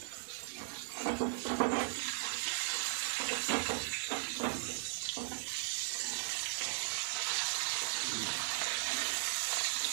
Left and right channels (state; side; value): silent; left; digital silence